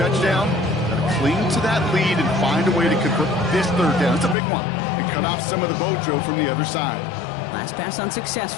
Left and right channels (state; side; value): drops out; right; at 4.4 s